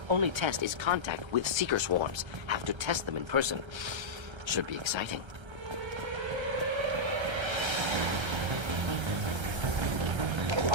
Only test is contact with seeker swarms. Have to test them in person. Should be exciting.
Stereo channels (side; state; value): left; late; 1.3 ms